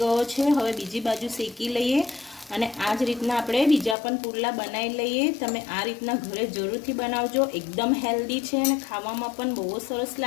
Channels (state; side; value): drops out; right; at 4.0 s